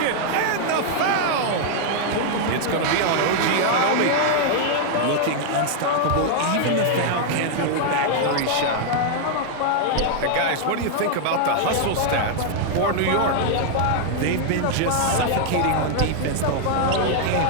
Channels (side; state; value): both; different; correlation 0.00